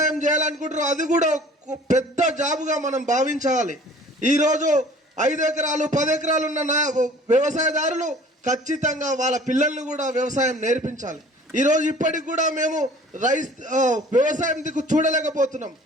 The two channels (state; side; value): normal; both; correlation 0.49